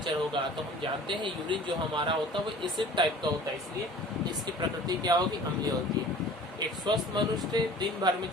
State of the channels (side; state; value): both; normal; correlation 0.46